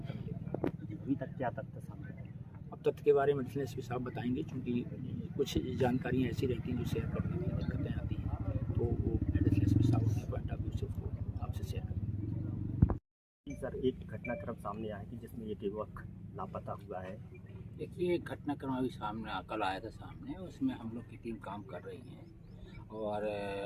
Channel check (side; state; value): both; identical; correlation 1.00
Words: मिलेगी। अभी तक क्या तथ्य सामने आए? अब तथ्य के बारे में एडिशनल एसपी साहब बताएंगे, क्योंकि कुछ जानकारियाँ ऐसी रहती हैं जो शेयर करने में दिक्कतें आती हैं, तो वो एडिशनल एसपी साहब अपने पॉइंट ऑफ व्यू से उसको आपसे शेयर करेंगे। सर, एक घटनाक्रम सामने आया कि जिसमें एक युवक लापता हुआ है। देखिए, एक घटनाक्रम अभी सामने कल आया था सामने, उसमें हम लोग की टीम काम कर रही है और